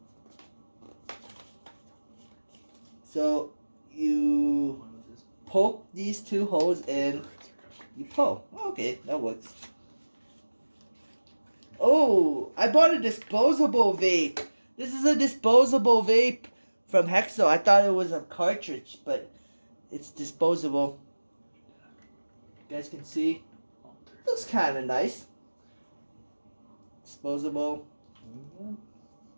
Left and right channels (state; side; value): inverted; both; correlation -1.00